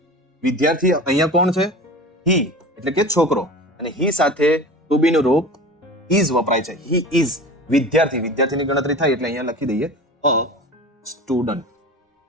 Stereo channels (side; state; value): both; normal; correlation 0.35